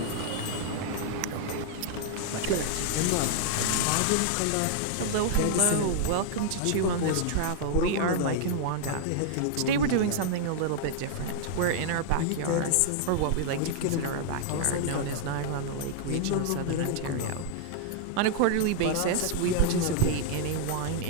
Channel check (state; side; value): different; both; correlation -0.01